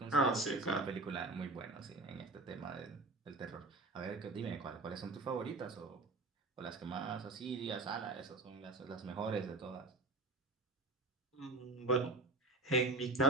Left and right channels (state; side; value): quieter; left; 3.1 dB